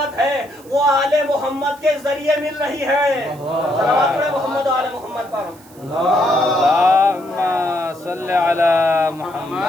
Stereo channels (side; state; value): right; noise; hiss, 25 dB below the sound